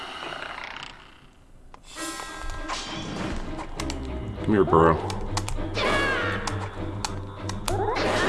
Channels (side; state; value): both; identical; correlation 1.00